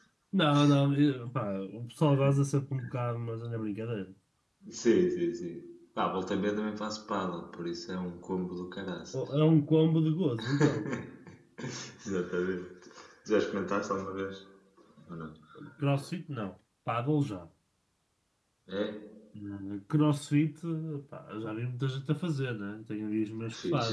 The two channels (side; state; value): both; identical; correlation 1.00